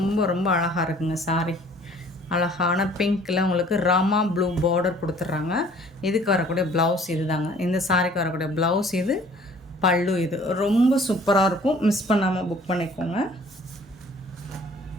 ரொம்ப அழகாக இருக்குங்க சாரி. அழகான பிங்க்கில் உங்களுக்கு ராமா ப்ளூ பார்டர் கொடுத்துட்றாங்க. இதுக்கு வரக்கூடிய ப்ளவுஸ் இது தாங்க. இந்த சாரிக்கு வரக்கூடிய ப்ளவுஸ் இது, பல்லு இது. ரொம்ப சூப்பராக இருக்கும். மிஸ் பண்ணாமல் புக் பண்ணிக்கோங்க.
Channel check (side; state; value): both; normal; correlation 0.54